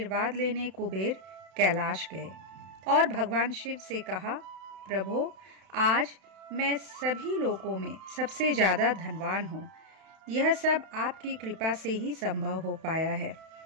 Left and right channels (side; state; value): left; late; 32 ms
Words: लेने कुबेर कैलाश गए और भगवान शिव से कहा, प्रभु, आज मैं सभी लोकों में सबसे ज़्यादा धनवान हूँ। यह सब आपकी कृपा से ही संभव हो पाया है।